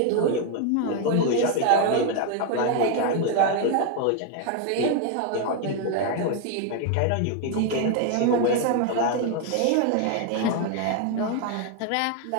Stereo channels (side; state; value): both; different; correlation 0.01